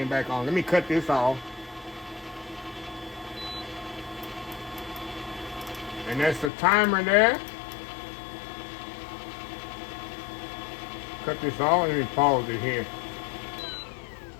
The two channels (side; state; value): right; drops out; at 6.5 s